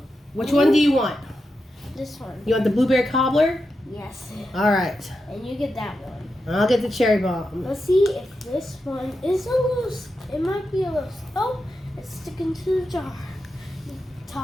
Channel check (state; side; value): normal; both; correlation 0.88